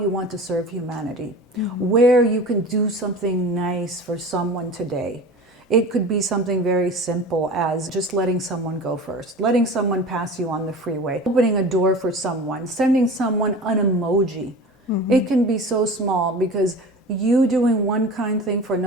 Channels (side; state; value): both; normal; correlation 0.36